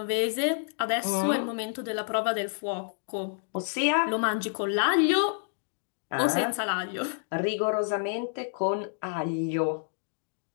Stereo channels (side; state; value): right; silent; digital silence